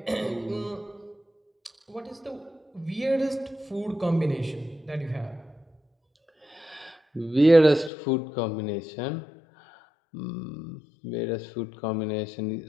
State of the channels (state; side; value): drops out; right; at 7.9 s